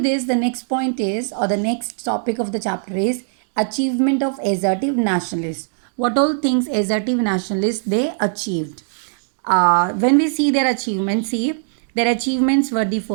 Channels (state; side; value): silent; left; digital silence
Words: the next point is, or the next topic of the chapter is achievement of assertive nationalists. What all things assertive nationalists they achieved? When we see their achievements, see, their achievements were the